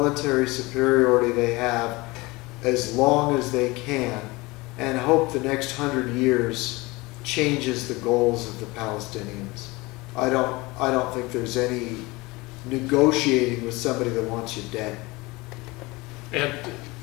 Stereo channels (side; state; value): right; quieter; 22.9 dB